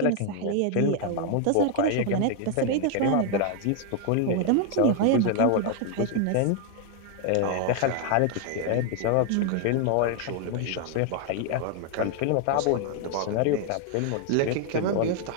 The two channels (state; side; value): different; both; correlation 0.00